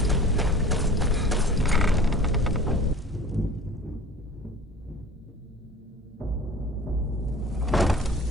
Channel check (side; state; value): both; normal; correlation 0.43